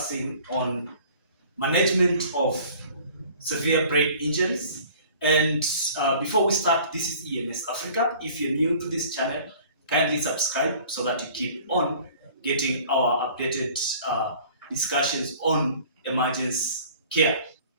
on management of severe brain injuries. And before we start, this is EMS-AFRICA. If you're new to this channel, kindly subscribe so that you keep on getting our updated discussions on emergency care.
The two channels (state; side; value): inverted; both; correlation -0.49